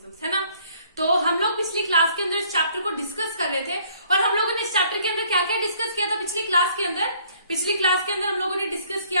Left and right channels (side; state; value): both; inverted; correlation -0.61